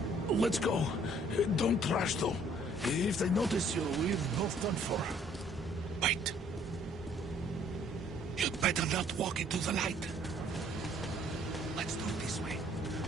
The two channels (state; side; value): normal; both; correlation 0.61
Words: Let's go. Don't rush, though. If they notice you, we're both done for. Wait. You'd better not walk into the light. Let's do it this way.